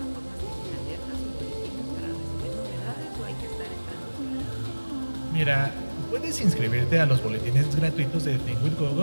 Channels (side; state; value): both; inverted; correlation -1.00